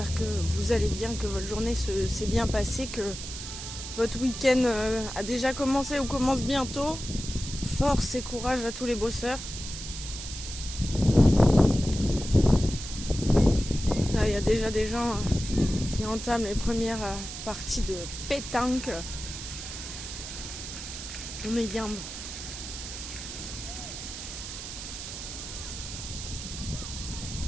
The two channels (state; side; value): noise; right; hiss, 9 dB below the sound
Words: que vous allez bien, que votre journée s'est bien passée, que votre week-end a déjà commencé ou commence bientôt. Force et courage à tous les bosseurs. Là, il y a déjà des gens qui entament les premières parties de pétanque. On est gambe.